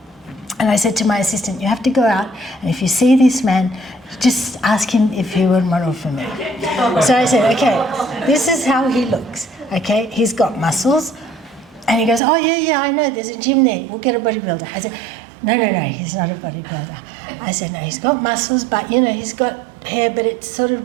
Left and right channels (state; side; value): drops out; left; at 12.2 s